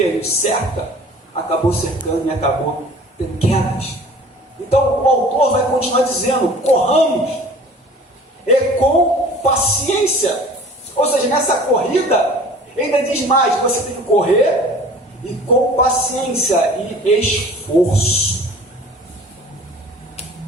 nos cerca, acabou cercando e acabou tendo quedas. Então o autor vai continuar dizendo: corramos, e com paciência. Ou seja, nessa corrida, ainda diz mais: você tem que correr e com paciência e esforço.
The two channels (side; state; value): both; normal; correlation 0.46